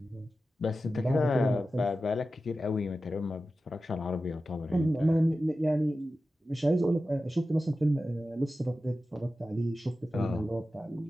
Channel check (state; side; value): normal; both; correlation 0.93